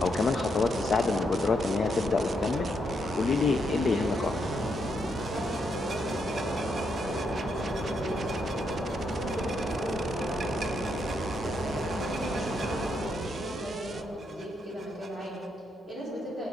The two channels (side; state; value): both; normal; correlation 0.78